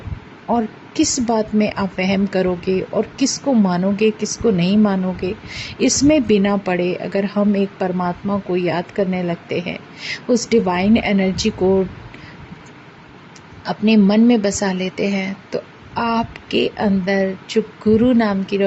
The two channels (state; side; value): identical; both; correlation 1.00